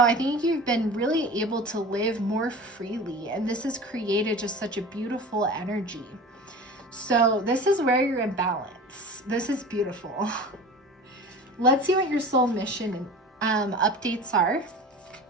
I think you've been really able to live more freely, and this has created just such a beautiful energy. So this is where you're in balance. This is beautiful. Let's see what your soul mission updates are.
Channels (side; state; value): both; normal; correlation 0.36